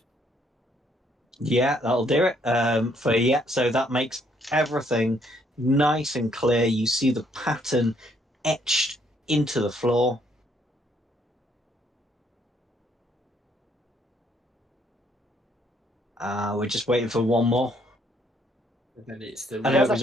Yeah, that'll do it. So that makes everything nice and clear. You see the pattern etched into the floor. We're just waiting for one more. And then it's the I know it was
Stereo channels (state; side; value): normal; both; correlation 0.68